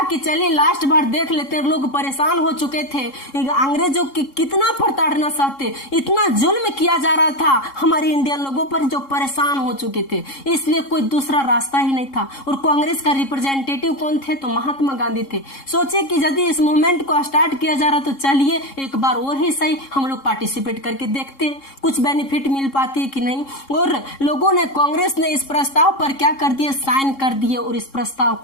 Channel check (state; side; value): late; right; 3.7 ms